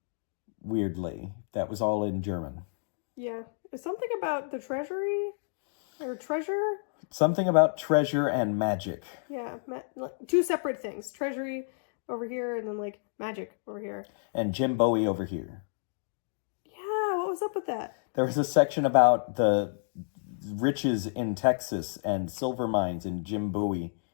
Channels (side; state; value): right; silent; digital silence